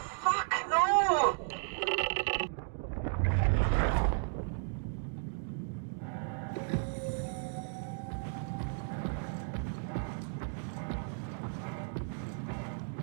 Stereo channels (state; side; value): silent; left; 55 dB below the other